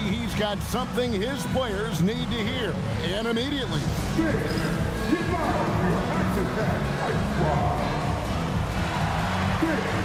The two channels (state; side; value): identical; both; correlation 1.00